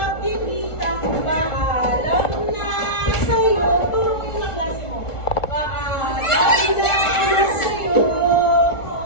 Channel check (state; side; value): late; right; 1.4 ms